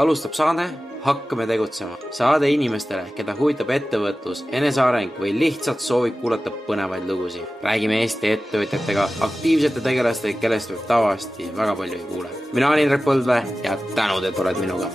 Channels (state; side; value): normal; both; correlation 0.95